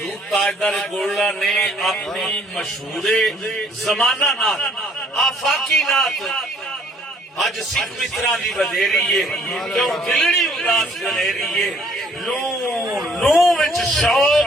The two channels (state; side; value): normal; both; correlation 0.60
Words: تاجدار گولڑا نے اپنی مشہور زمانہ نات آفاقی نات اج سکھ مترا دی بدھیری ہے کیوں دلڑی اداس گلیری ہے لوں وچ